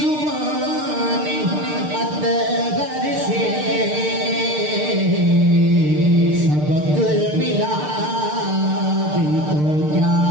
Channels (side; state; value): left; late; 6.7 ms